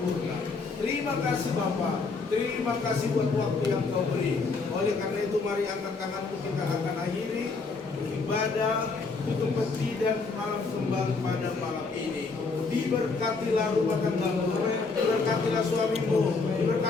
Terima kasih Bapa, terima kasih buat waktu yang Kau beri. Oleh karena itu mari angkat tanganmu, kita akan akhiri ibadah tutup peti dan malam kembang pada malam ini. Diberkatilah rumah tanggamu, diberkatilah suamimu,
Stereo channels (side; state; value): right; quieter; 4.2 dB